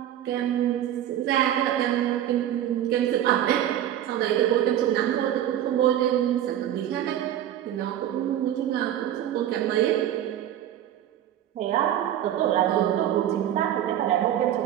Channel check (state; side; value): quieter; left; 11.4 dB